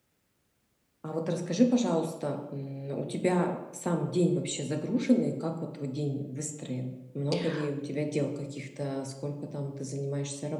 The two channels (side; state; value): both; identical; correlation 1.00